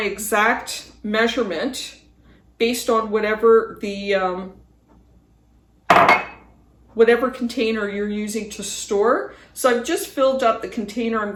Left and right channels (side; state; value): both; identical; correlation 1.00